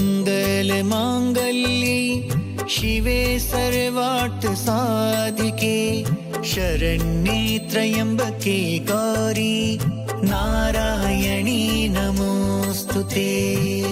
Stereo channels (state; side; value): identical; both; correlation 1.00